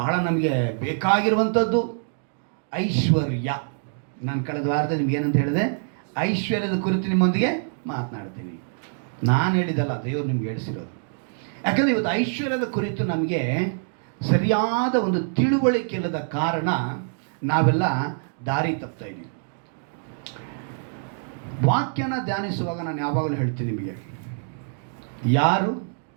ನಮಗೆ ಬೇಕಾಗಿರುವಂಥದ್ದು ಐಶ್ವರ್ಯ. ನಾನು ಕಳೆದ ವಾರದಲ್ಲಿ ನಿಮ್ಗೆ ಏನಂತ ಹೇಳಿದೆ, ಐಶ್ವರ್ಯದ ಕುರಿತು ನಿಮ್ಮೊಂದಿಗೆ ಮಾತನಾಡ್ತೀನಿ. ನಾನು ಹೇಳಿದಲ್ಲ, ದೇವರು ನಿಮ್ಗೆ ಹೇಳಿಸಿರೋದು. ಯಾಕಂದರೆ ಇವತ್ತು ಐಶ್ವರ್ಯದ ಕುರಿತು ನಮಗೆ ಸರಿಯಾದ ಒಂದು ತಿಳುವಳಿಕೆ ಇಲ್ಲದ ಕಾರಣ ನಾವೆಲ್ಲ ದಾರಿ ತಪ್ತಾ ಇದ್ದೀವಿ. ವಾಕ್ಯನ ಧ್ಯಾನಿಸುವಾಗ ನಾನು ಯಾವಾಗಲೂ ಹೇಳ್ತೀನಿ ನಿಮಗೆ, ಯಾರು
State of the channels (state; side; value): silent; left; digital silence